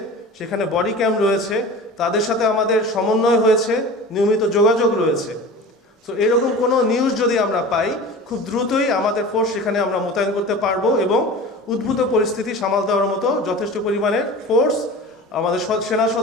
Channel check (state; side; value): normal; both; correlation 0.36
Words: সেখানে বডি ক্যাম্প রয়েছে, তাদের সাথে আমাদের সমন্বয় হয়েছে, নিয়মিত যোগাযোগ রয়েছে। তো এরকম কোনো নিউজ যদি আমরা পাই খুব দ্রুতই আমাদের ফোর্স সেখানে আমরা মোতায়েন করতে পারবো এবং উদ্ভূত পরিস্থিতি সামাল দেওয়ার মতো যথেষ্ট পরিমাণের ফোর্স আমাদের সেনা